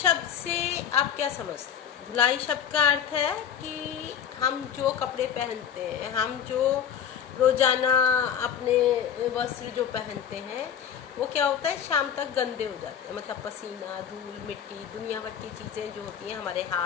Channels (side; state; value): right; quieter; 8.5 dB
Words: से आप क्या समझते हैं? धुलाई शब्द का अर्थ है कि हम जो कपड़े पहनते हैं, हम जो रोजाना अपने वस्त्र जो पहनते हैं, वो क्या होता है, शाम तक गंदे हो जाते हैं। मतलब पसीना, धूल, मिट्टी, दुनिया भर की चीज़ें जो होती हैं, हमारे